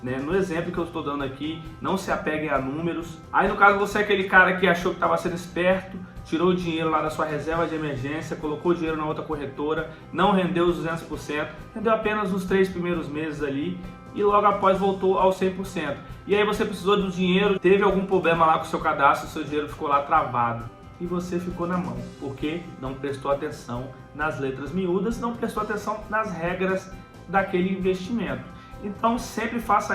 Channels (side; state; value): both; identical; correlation 1.00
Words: né? No exemplo que eu estou dando aqui, não se apeguem a números. Aí no caso você é aquele cara que achou que estava sendo esperto, tirou o dinheiro lá da sua reserva de emergência, colocou o dinheiro na outra corretora, não rendeu os 200%, rendeu apenas os 3 primeiros meses ali e logo após voltou ao 100%. E aí você precisou do dinheiro, teve algum problema lá com o seu cadastro, seu dinheiro ficou lá travado. E você ficou na mão, porque não prestou atenção nas letras miúdas, não prestou atenção nas regras daquele investimento. Então sempre